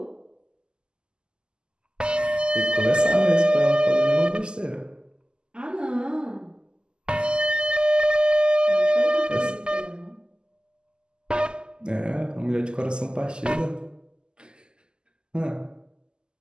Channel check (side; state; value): left; late; 0.047 ms